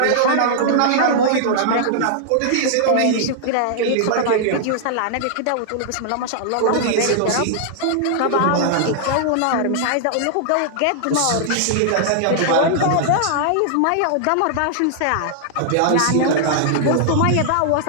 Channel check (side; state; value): both; different; correlation -0.01